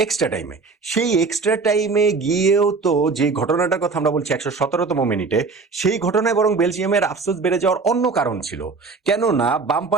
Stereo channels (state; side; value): quieter; left; 4.4 dB